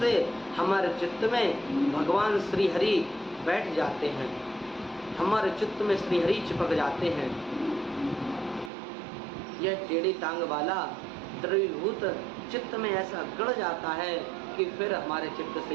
से हमारे चित्त में भगवान श्री हरि बैठ जाते हैं, हमारे चित्त में श्री हरि चिपक जाते हैं। यह टेढ़ी टांग वाला द्रवीभूत चित्त में ऐसा गड़ जाता है कि फिर हमारे चित्त से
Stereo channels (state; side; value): drops out; left; at 8.7 s